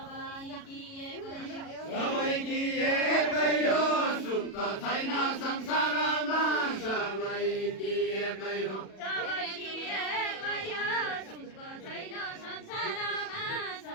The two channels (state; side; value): late; right; 37 ms